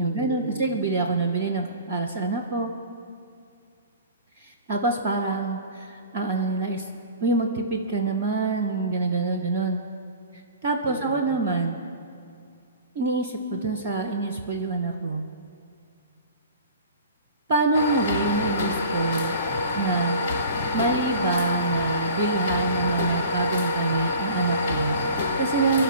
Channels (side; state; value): both; inverted; correlation -0.41